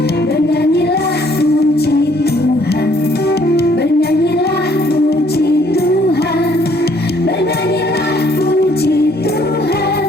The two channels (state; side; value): normal; both; correlation 0.63